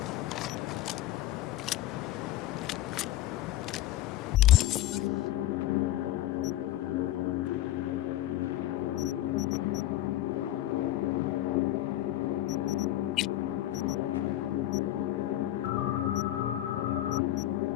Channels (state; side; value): quieter; right; 14.4 dB